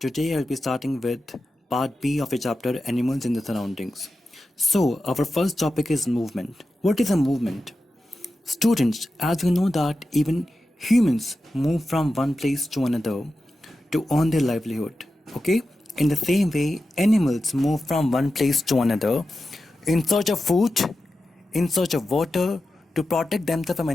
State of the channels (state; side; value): normal; both; correlation 0.92